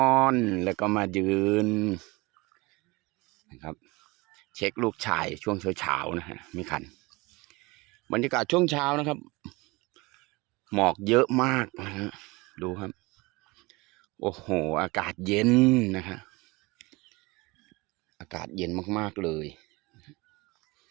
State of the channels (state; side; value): quieter; left; 23.9 dB